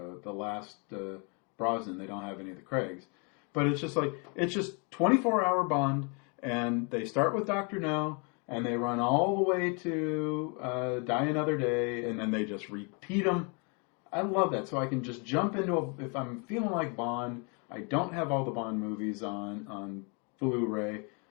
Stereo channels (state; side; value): quieter; right; 34.9 dB